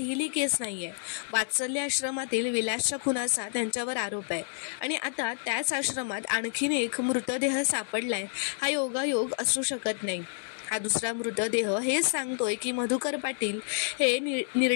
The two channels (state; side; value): silent; right; digital silence